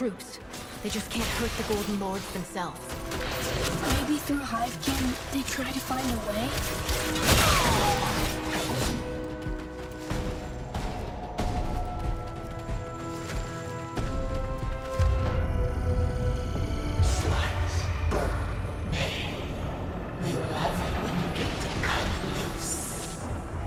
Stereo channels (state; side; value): identical; both; correlation 1.00